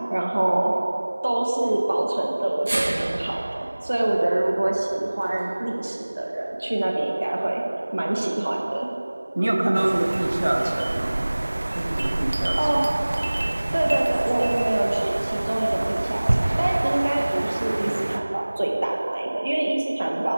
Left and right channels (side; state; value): both; inverted; correlation -1.00